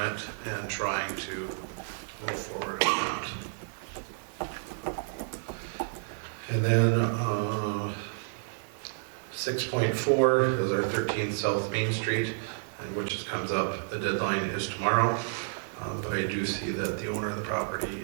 it and trying to move forward on that. And then 6.4 is our 13 South Main Street, and which just comes up, the deadline is tomorrow, but I do see that the owner of the property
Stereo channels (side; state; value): left; silent; 58 dB below the other